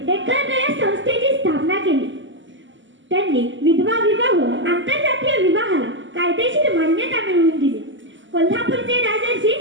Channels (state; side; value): late; left; 0.55 ms